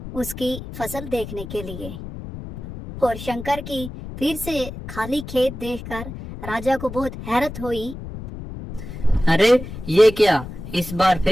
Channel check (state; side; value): noise; left; rumble, 10 dB below the sound